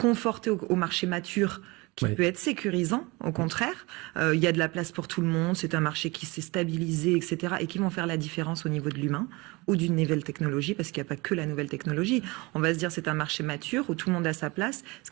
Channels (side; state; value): left; quieter; 24.5 dB